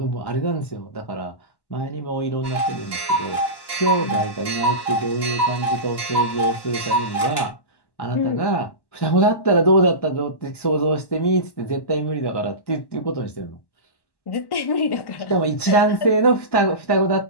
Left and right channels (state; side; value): late; right; 1.1 ms